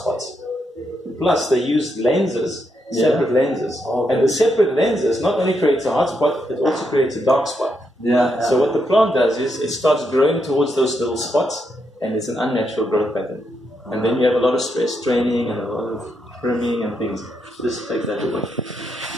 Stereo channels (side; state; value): both; normal; correlation 0.80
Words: Plus, they use lenses separate lenses. And the separate lenses not only creates a hot spot, it also creates a dark spot. So what the plant does is it starts growing towards those little spots, and it's an unnatural growth pattern. And then you have a lot of stress training and a lot of trimming and things. Just take that away.